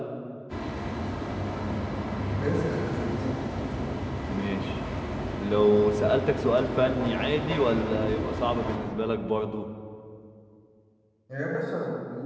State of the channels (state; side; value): identical; both; correlation 1.00